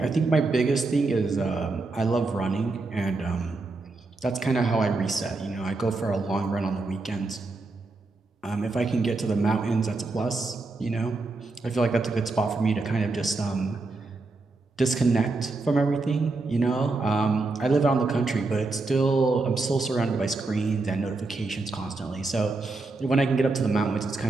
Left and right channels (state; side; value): quieter; left; 3.5 dB